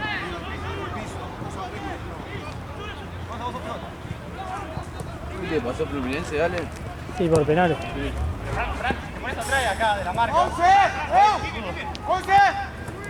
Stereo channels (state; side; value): identical; both; correlation 1.00